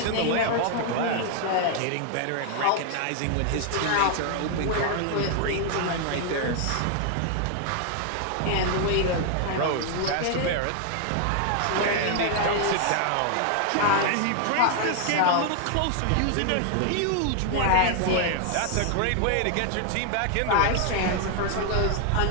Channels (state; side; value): different; both; correlation 0.00